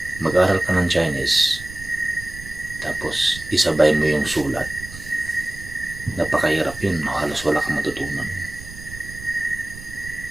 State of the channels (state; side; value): noise; right; rumble, 14 dB below the sound